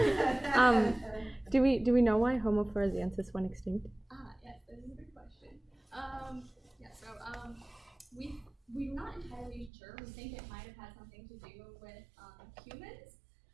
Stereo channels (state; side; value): drops out; left; at 9.7 s